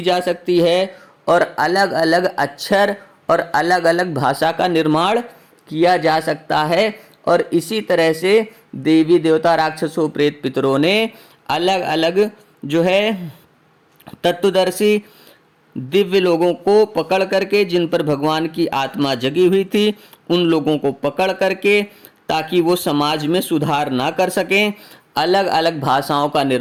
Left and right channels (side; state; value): both; identical; correlation 1.00